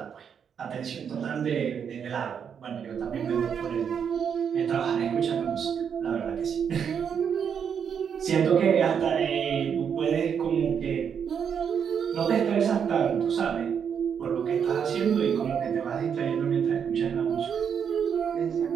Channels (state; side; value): quieter; left; 7.5 dB